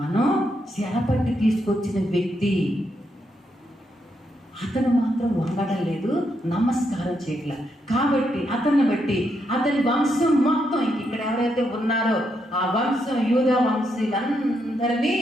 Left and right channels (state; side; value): normal; both; correlation 0.79